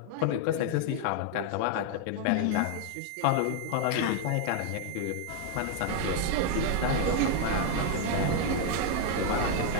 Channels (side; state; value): both; different; correlation 0.00